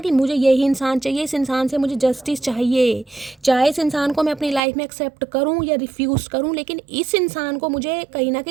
मुझे यही इंसान चाहिए, इस इंसान से मुझे जस्टिस चाहिए, चाहे इस इंसान को मैं अपनी लाइफ में एक्सेप्ट करूँ या रिफ्यूज़ करूँ, लेकिन इस इंसान को मुझे कहीं ना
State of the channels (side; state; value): left; drops out; at 4.6 s